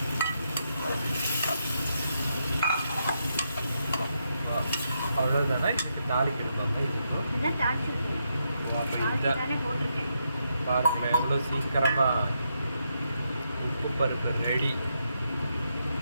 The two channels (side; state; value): both; inverted; correlation -0.81